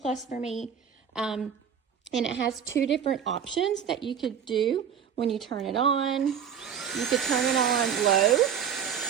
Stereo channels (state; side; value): quieter; left; 8.0 dB